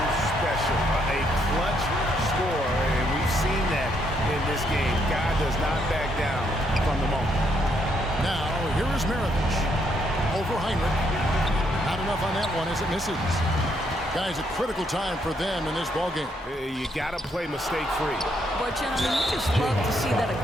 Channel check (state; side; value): normal; both; correlation 0.74